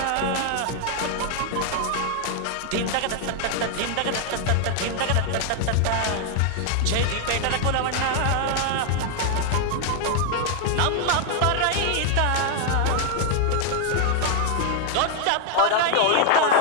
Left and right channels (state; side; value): different; both; correlation 0.00